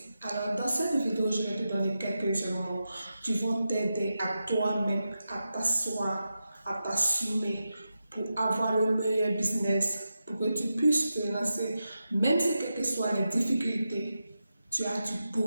Alors, dans cette vidéo, je vais te donner quelques éléments qui vont t'aider à toi-même à t'asseoir, à t'assumer pour avoir le meilleur business, pour que tu puisses te lancer, même si quelles que soient les difficultés, tu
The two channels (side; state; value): both; inverted; correlation -0.90